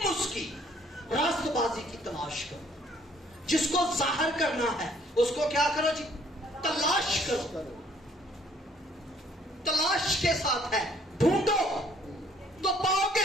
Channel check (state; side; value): normal; both; correlation 0.62